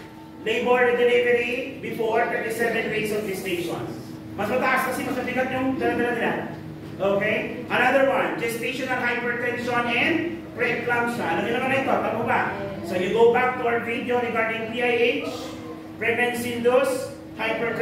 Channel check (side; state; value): both; identical; correlation 1.00